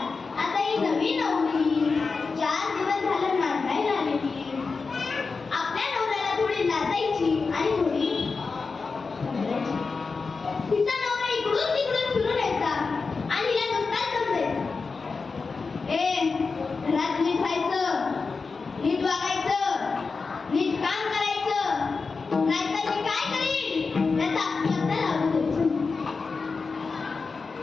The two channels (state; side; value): quieter; right; 4.5 dB